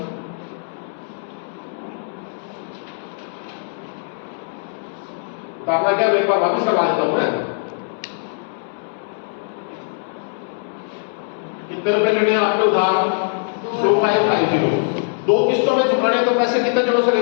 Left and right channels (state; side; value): silent; right; 65 dB below the other